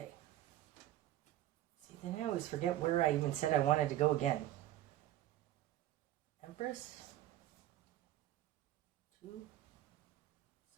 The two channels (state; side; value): quieter; left; 14.0 dB